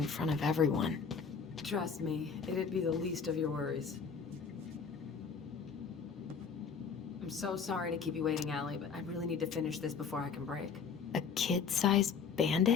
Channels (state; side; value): quieter; right; 6.0 dB